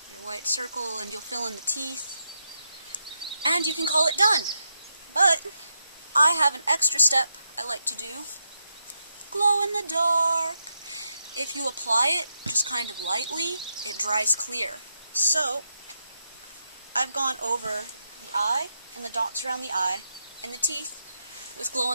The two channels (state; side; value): inverted; both; correlation -0.83